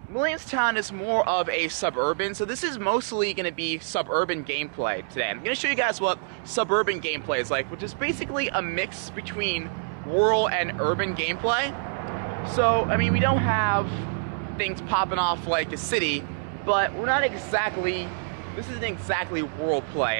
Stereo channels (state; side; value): silent; left; digital silence